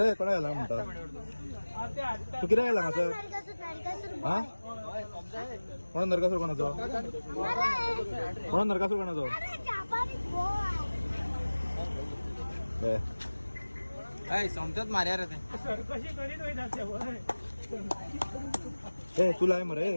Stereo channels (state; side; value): inverted; both; correlation -1.00